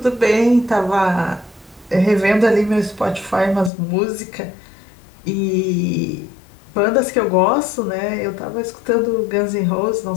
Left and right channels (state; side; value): drops out; right; at 3.7 s